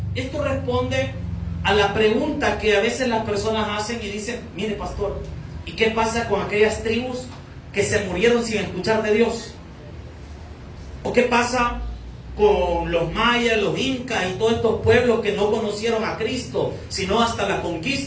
Esto responde a la pregunta que a veces las personas hacen y dicen: mire, pastor, ¿y qué pasa con aquellas tribus que se murieron sin escuchar de Dios? ¿O qué pasa con los mayas, los incas y todos estos pueblos que no conocieron a Cristo, sino hasta la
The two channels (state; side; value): identical; both; correlation 1.00